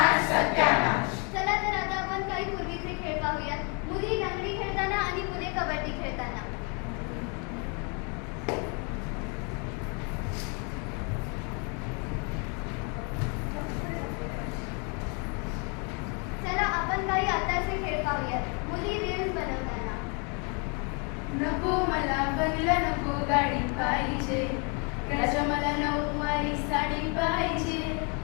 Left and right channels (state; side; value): quieter; right; 35.0 dB